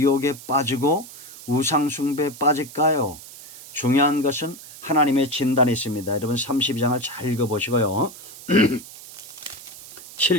빠지고 우상숭배에 빠질까요? 중요한 것은 하나님의 진단이 있습니다. 여러분 32장을 잘 읽어보시고요.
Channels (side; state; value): right; noise; hiss, 16 dB below the sound